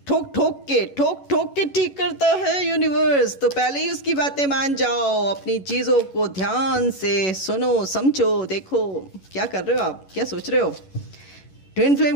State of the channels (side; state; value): right; late; 11 ms